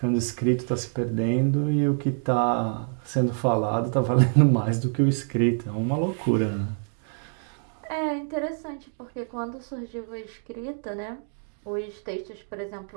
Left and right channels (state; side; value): silent; left; 61 dB below the other